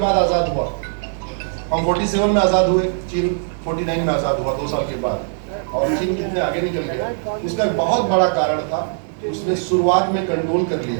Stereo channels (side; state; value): left; silent; digital silence